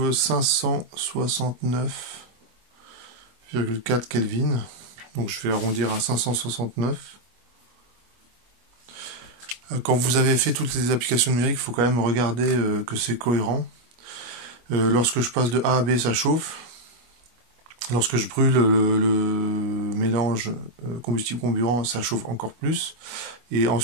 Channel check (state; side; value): late; left; 25 ms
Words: 569,4 Kelvin. Donc je vais arrondir à 569. Quand vous avez fait toutes les applications numériques, il faut quand même regarder que c'est cohérent. Lorsque je passe de A à B, ça chauffe. Lorsque je brûle le mélange combustible-comburant, ça chauffe encore plus. Et